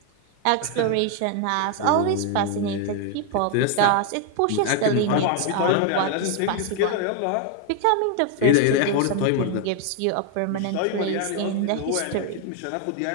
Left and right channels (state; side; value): different; both; correlation 0.01